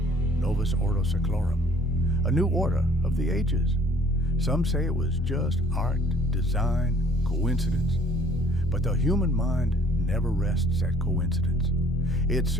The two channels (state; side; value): normal; both; correlation 0.56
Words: novus ordo seclorum, a new order of the ages. Some say it was just art, design, coincidence. But the human mind never rests at coincidence. It